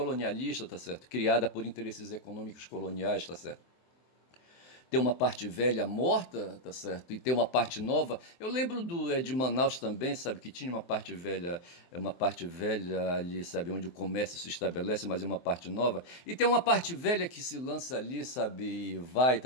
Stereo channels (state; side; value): late; right; 23 ms